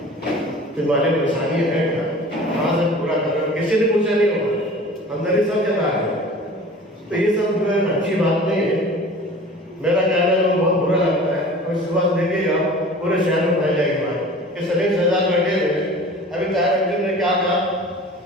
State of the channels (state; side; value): normal; both; correlation 0.42